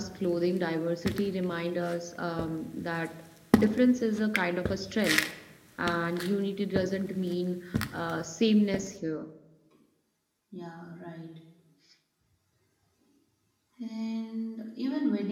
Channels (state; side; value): identical; both; correlation 1.00